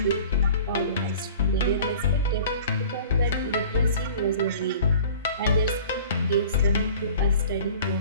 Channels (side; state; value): both; inverted; correlation -0.45